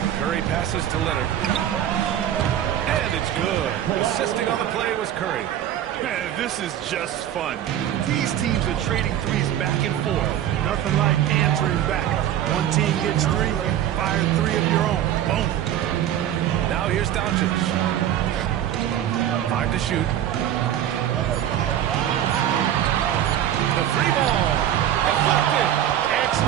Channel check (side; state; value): left; quieter; 11.1 dB